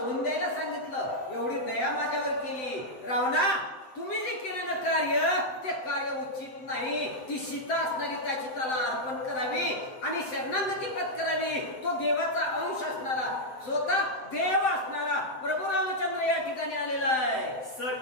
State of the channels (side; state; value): right; late; 7.8 ms